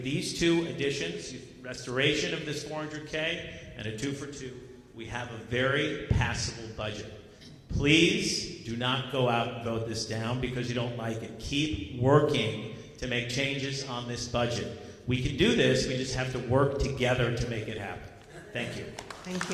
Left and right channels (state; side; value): identical; both; correlation 1.00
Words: these 2 additions, restoration of this $400K and a 2-for-2, we have a very passable budget. Please do not go out and vote this down because you don't like it. Keep working to make changes on this budget. We can do this, we just have to work together to make it happen. Thank you. Thank